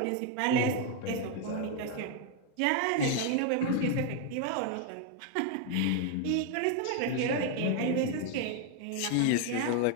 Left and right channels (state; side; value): different; both; correlation 0.01